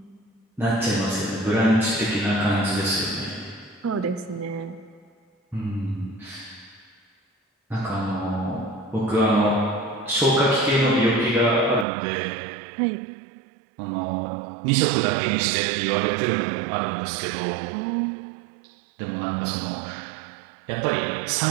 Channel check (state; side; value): drops out; left; at 11.9 s